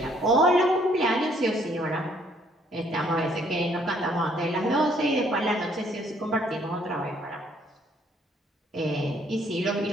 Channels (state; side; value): normal; both; correlation 0.65